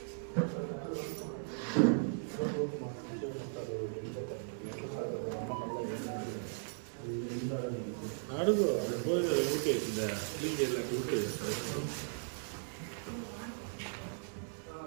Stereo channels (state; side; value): silent; left; digital silence